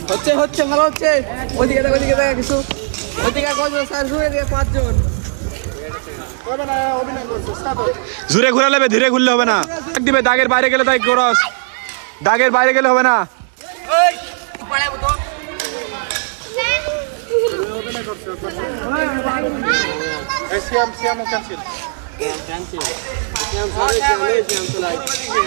হচ্ছে হচ্ছে ভালো হচ্ছে। ওইদিকে ওইদিকে দেখা কিছু, ওইদিকে কজন? 4 জন, এদিকে 5 জন। জোরে ঘুরা লেবে, ধীরে ঘুরলে হবে না। দিবে দাগের বাইরে গেলে তাই ক্রস, দাগের বাইরে গেলে হবে না।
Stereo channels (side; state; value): left; silent; digital silence